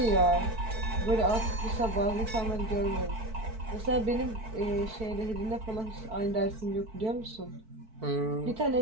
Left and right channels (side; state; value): left; late; 4.5 ms